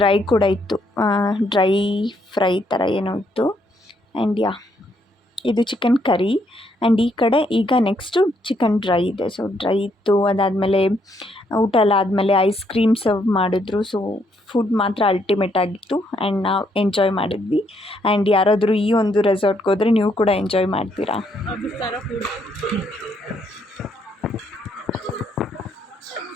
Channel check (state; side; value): normal; both; correlation 0.73